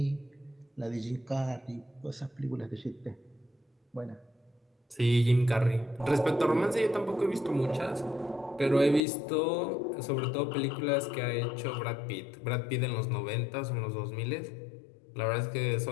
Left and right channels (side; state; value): right; drops out; at 9.0 s